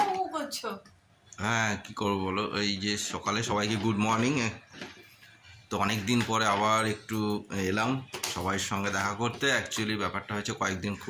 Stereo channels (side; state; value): both; identical; correlation 1.00